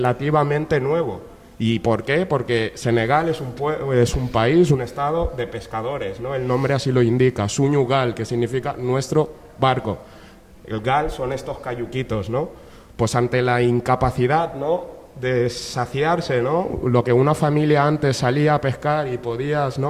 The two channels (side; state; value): both; identical; correlation 1.00